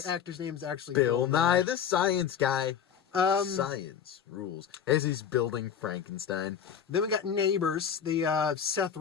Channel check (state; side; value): quieter; right; 8.2 dB